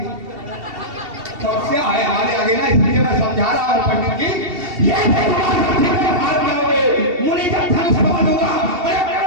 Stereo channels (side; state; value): left; late; 2.7 ms